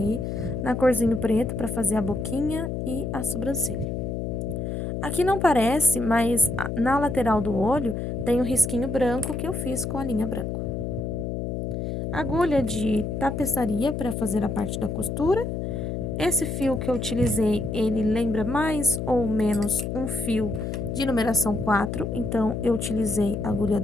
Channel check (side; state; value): left; noise; hum, 3 dB below the sound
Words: na corzinho preto para fazer a boquinha e a sobrancelha. Aqui não parece, mas na lateral do olho tem um risquinho branco que eu fiz com a linha branca. Agulha de tapeçaria para fazer a parte da costura. Esse fio que eu utilizei, ele lembra mais ou menos um fio de numeração 4, então eu utilizei agulha